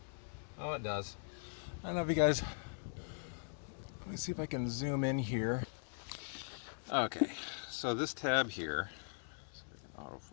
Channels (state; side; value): silent; right; digital silence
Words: Oh, it does. I don't know if you guys, let me see if I can zoom in here. Okay, so this tab here, see if I can